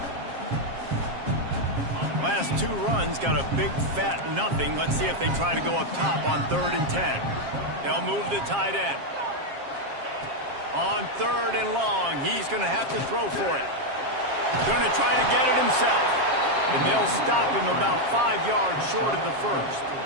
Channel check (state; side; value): late; left; 7.4 ms